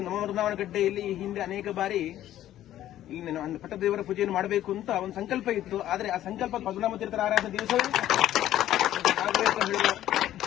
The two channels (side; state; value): right; quieter; 12.7 dB